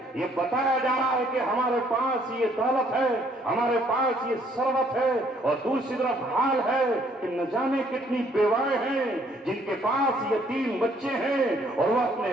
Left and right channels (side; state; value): both; normal; correlation 0.65